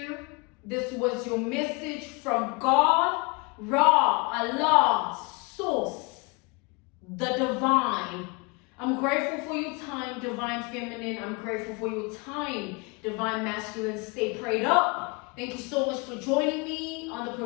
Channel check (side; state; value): right; quieter; 29.7 dB